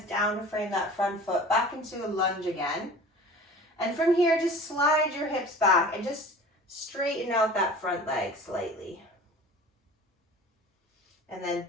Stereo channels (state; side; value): normal; both; correlation 0.41